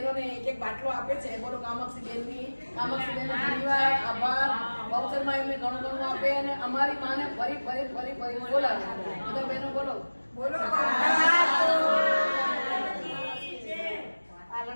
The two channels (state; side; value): inverted; both; correlation -1.00